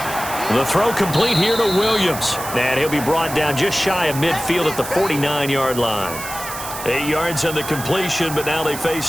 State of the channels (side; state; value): right; noise; hiss, 10 dB below the sound